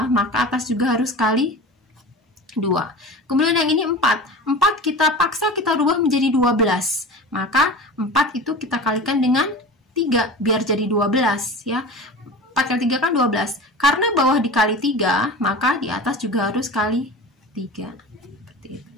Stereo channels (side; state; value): both; normal; correlation 0.33